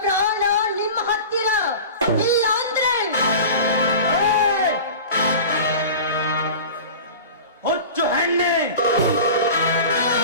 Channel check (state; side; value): inverted; both; correlation -0.35